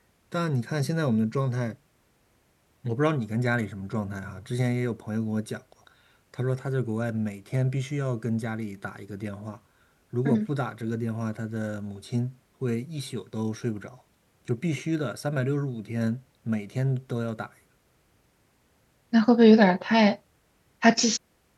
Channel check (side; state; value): both; identical; correlation 1.00